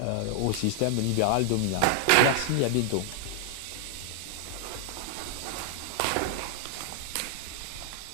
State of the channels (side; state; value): both; different; correlation 0.00